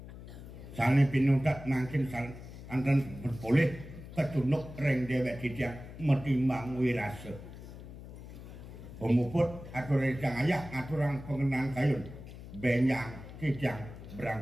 sane pinutat makin anten berboleh ketunuk reng dewek dijang metimbang wirase pemuput atur rejang ayah aturang pengenang kayun benyang dijang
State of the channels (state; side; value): noise; left; hum, 14 dB below the sound